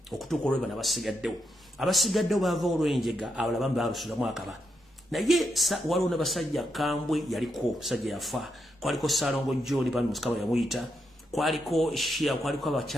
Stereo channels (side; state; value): both; normal; correlation 0.82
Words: okutuuka olweba n'abasigaddewo abasigaddewo baava olw'enjega abalala bambi balusulamu akaba naye waliwo n'abasajja Kambwe yaliko sajja yafa kwaliko Salongo John bani Musikaba yamuyita kwaliko Shia kwaliko